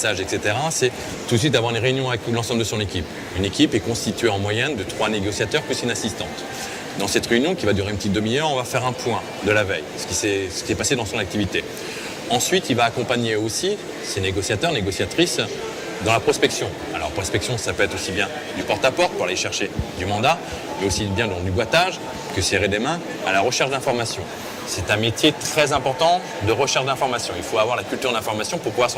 etc., c'est tout de suite d'avoir une réunion avec l'ensemble de son équipe. Une équipe est constituée en moyenne de 3 négociateurs plus une assistante. Dans cette réunion, qui va durer une petite demi-heure, on va faire un point de la veille, ce qui est passé dans son activité. Ensuite, il va accompagner aussi ses négociateurs, négociatrices dans la prospection. Alors, prospection, ça peut être aussi bien du porte-à-porte pour aller chercher du mandat, mais aussi bien dans du boitage que serrer des mains à la recherche d'informations. C'est un métier très important de recherche d'informations. Il faut avoir la culture d'information pour pouvoir se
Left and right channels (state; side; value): identical; both; correlation 1.00